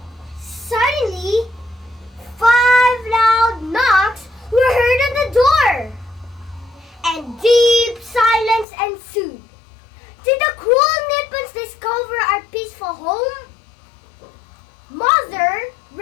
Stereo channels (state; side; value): drops out; right; at 8.7 s